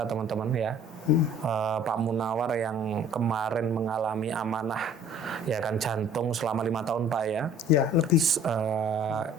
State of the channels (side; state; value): both; normal; correlation 0.52